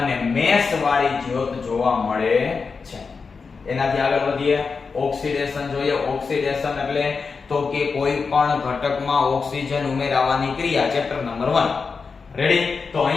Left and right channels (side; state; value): right; quieter; 5.0 dB